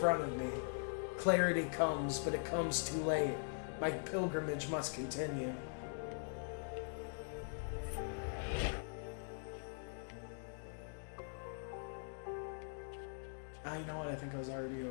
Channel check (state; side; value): silent; right; digital silence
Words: of me. Clarity comes, but it comes too late. My pilgrimage must continue. Ah, you know what? I think I was already